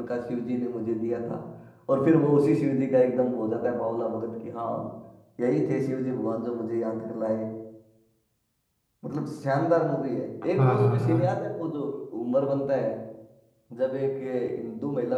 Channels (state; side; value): identical; both; correlation 1.00